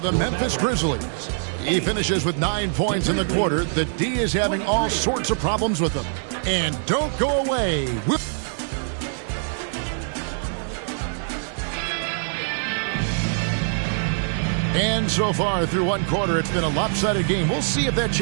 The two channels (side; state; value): left; silent; 63 dB below the other